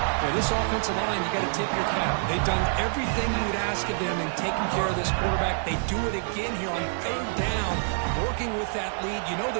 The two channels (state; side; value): silent; left; digital silence